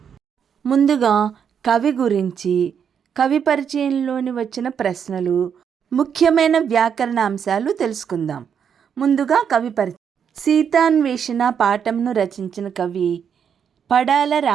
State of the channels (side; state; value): left; quieter; 7.7 dB